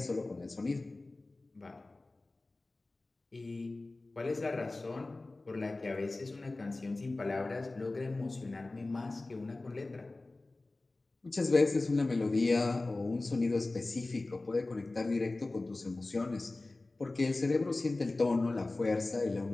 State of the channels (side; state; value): right; quieter; 3.1 dB